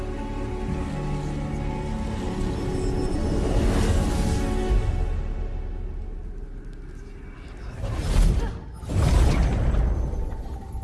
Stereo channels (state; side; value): identical; both; correlation 1.00